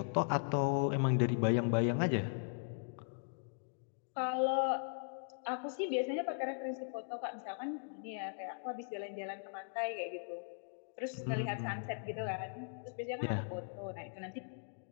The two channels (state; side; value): silent; right; digital silence